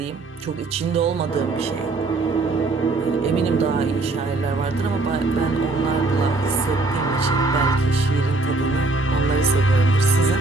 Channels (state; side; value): quieter; left; 3.3 dB